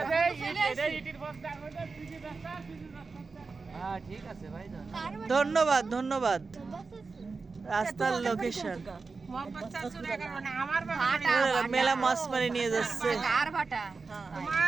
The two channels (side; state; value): left; quieter; 4.4 dB